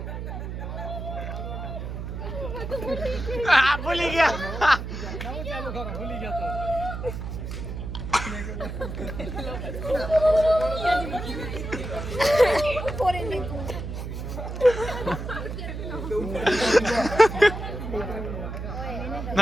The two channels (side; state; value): right; noise; hum, 6 dB below the sound